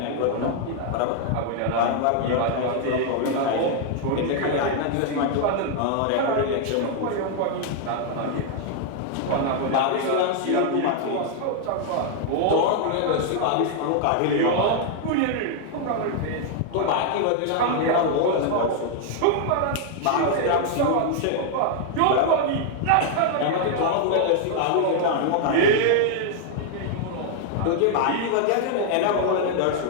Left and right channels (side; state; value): both; different; correlation 0.00